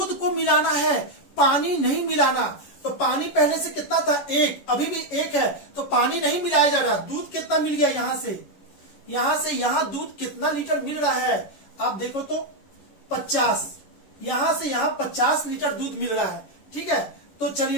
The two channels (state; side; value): late; right; 11 ms